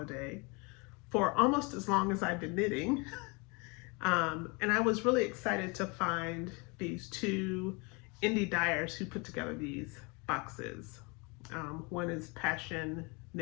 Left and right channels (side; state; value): right; quieter; 29.6 dB